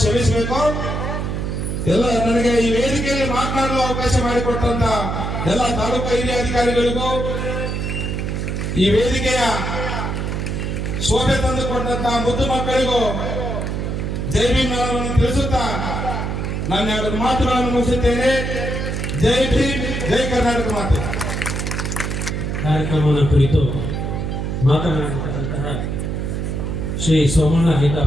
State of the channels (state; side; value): noise; right; hum, 2 dB below the sound